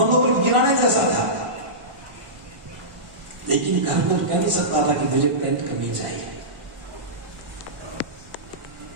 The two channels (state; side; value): late; left; 1.5 ms